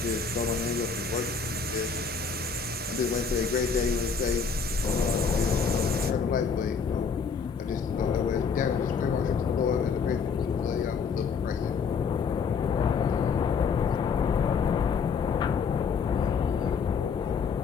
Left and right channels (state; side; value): quieter; right; 5.7 dB